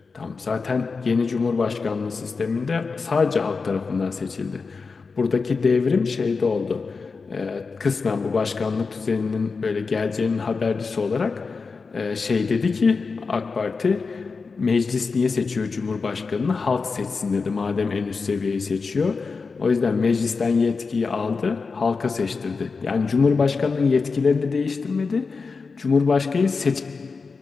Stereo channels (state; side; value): quieter; right; 4.6 dB